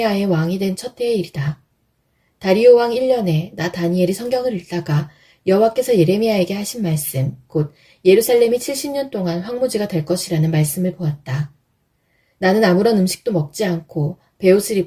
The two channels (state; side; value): identical; both; correlation 1.00